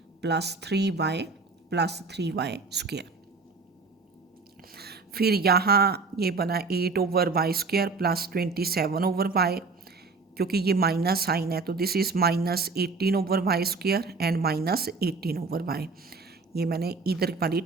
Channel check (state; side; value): quieter; left; 4.2 dB